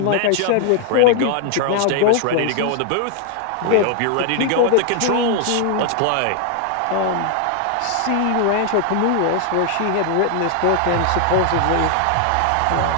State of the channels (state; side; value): different; both; correlation 0.00